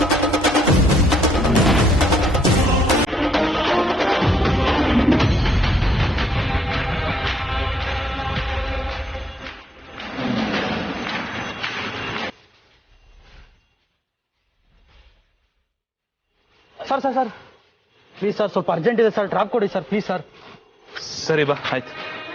Sir sir sir please sir, ಸ್ವಲ್ಪ ಅರ್ಜೆಂಟ್ ಇದೆ ಸರ್, ಡ್ರಾಪ್ ಕೊಡಿ ಸರ್ ಪ್ಲೀಸ್ ಸರ್. ಸರಿ ಬಾ, ಆಯ್ತು.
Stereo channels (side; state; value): both; normal; correlation 0.76